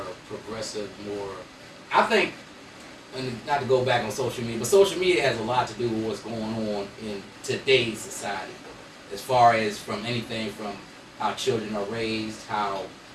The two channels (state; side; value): identical; both; correlation 1.00